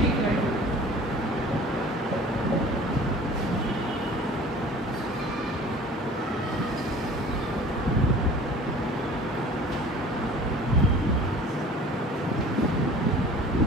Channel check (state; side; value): normal; both; correlation 0.45